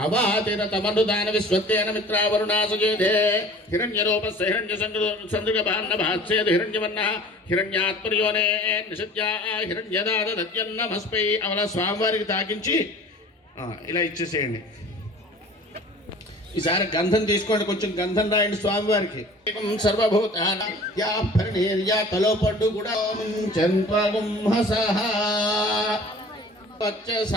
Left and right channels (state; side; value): normal; both; correlation 0.45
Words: అవాతిరతమనుదాన విశ్వత్తేన మిత్రావరుణాసుజేదే హిరణ్యరూపస్య హిరణ్యసందృగభాన్నభాస్యేద హిరణ్యవర్ణః హిరణ్యాత్పర్యోనే నిషద్యా హిరణ్యదాదత్యన్నమస్పై. అవలా స్వామివారికి తాకించి ఇలా ఇచ్చేసేయండి. ఈసారి గంధం తీసుకోండి, కొంచెం గంధం రాయండి స్వామివారికి. సర్వభూతాన్యా తలో పడ్డు కూడా